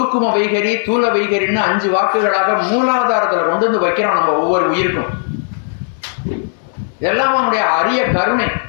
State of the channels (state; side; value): silent; right; 61 dB below the other